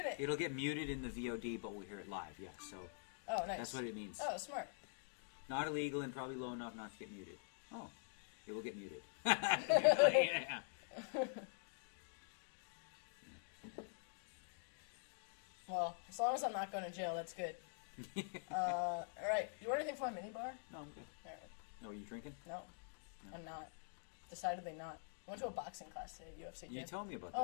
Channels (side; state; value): right; silent; digital silence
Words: it. It'll get muted in the VOD, but we'll hear it live. Yeah, so Oh, nice. that's what it means. Oh, smart. Not illegal and probably low enough not to get muted. Oh, it will get muted. Yeah. Well, as long as I'm not going to jail, that's good. All right. You want anything from my mini bar? No, I'm good. All right. No, are you drinking? No, I'm not. Decidedly not. I went to a boxing class today, UFC gym. You told me about that. Oh,